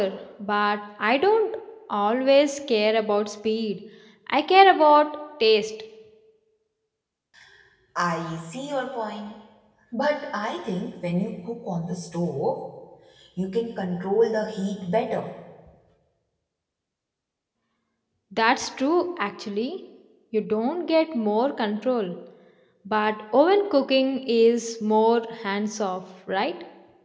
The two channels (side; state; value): both; identical; correlation 1.00